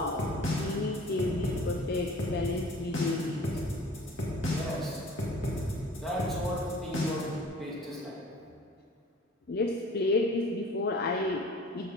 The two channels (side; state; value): both; normal; correlation 0.47